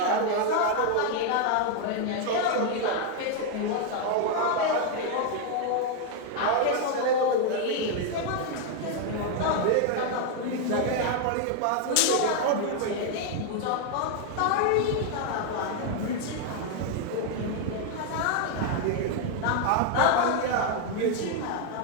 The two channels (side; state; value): both; different; correlation 0.01